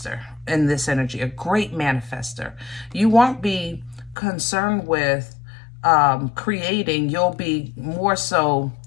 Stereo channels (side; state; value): right; drops out; at 4.2 s